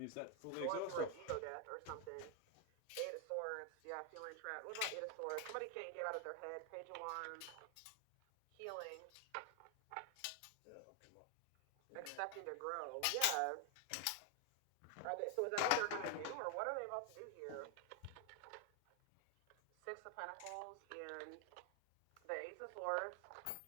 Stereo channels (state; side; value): different; both; correlation 0.00